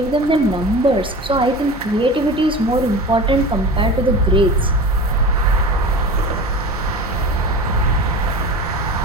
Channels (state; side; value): normal; both; correlation 0.33